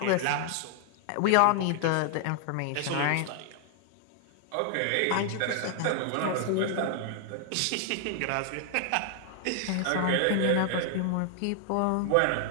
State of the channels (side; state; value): both; different; correlation 0.00